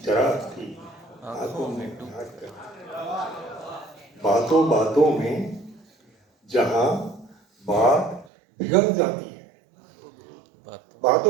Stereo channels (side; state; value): left; drops out; at 8.2 s